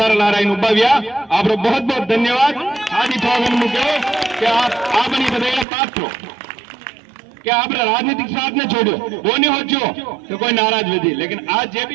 ला रहा उब्बाव्या। आप बहुत बहुत धन्यवाद। आज मुझे कि आप बधाई पात्र कि आप राजनीतिक स्वार्थ ने छोड़ो वो नहीं हो तो कोई नाराज विधि, लेकिन आज जे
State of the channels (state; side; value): drops out; left; at 5.7 s